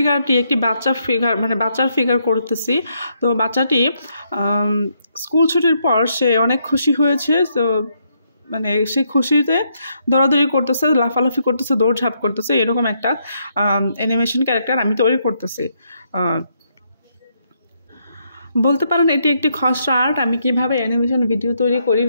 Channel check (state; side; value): inverted; both; correlation -0.76